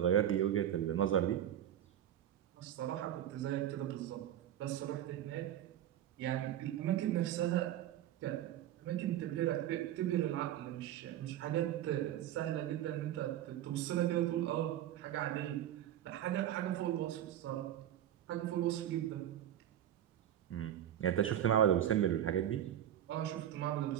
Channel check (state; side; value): quieter; left; 11.5 dB